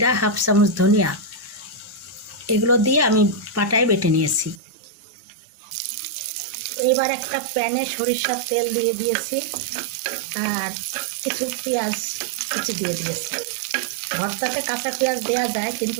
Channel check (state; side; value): drops out; left; at 4.6 s